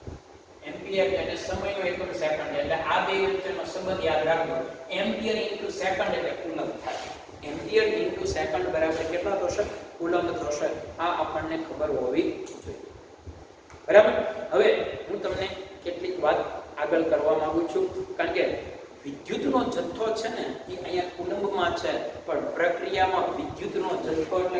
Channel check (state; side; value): identical; both; correlation 1.00